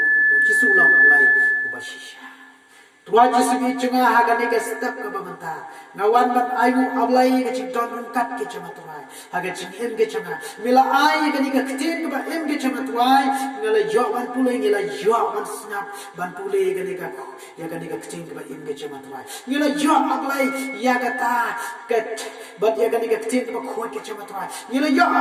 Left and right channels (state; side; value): identical; both; correlation 1.00